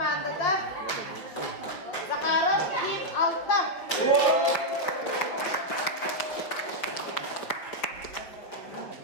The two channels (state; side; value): late; right; 5.7 ms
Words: да? Захаров, Дим, Алта.